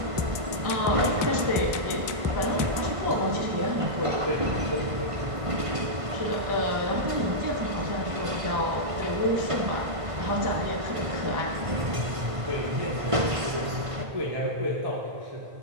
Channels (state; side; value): late; left; 1.5 ms